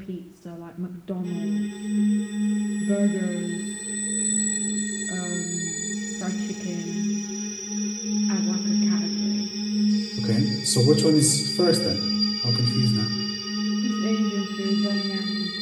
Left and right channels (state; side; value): identical; both; correlation 1.00